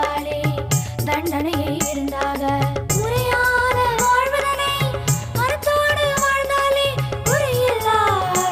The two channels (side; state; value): both; identical; correlation 1.00